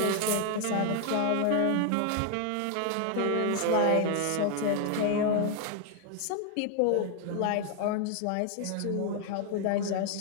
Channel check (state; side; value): different; both; correlation 0.00